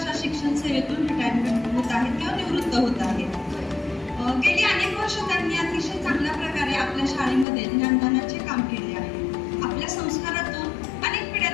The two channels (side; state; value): right; drops out; at 7.5 s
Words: शिक्षण सेवेतून रिटायरमेंट होत आहेत किंवा निवृत्त होत आहेत. गेली अनेक वर्ष त्यांनी अतिशय चांगल्या प्रकारे आपल्या शाळेमध्ये ज्ञानदानाचे काम केले आहे. आपल्या संस्कारातून अनेक पिढ्या